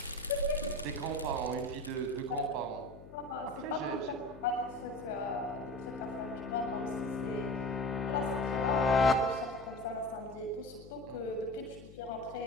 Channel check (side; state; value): left; noise; hum, 17 dB below the sound